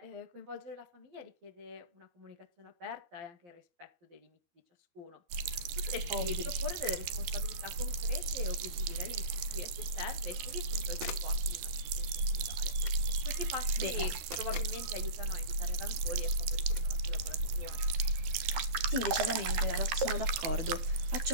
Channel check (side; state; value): left; late; 13 ms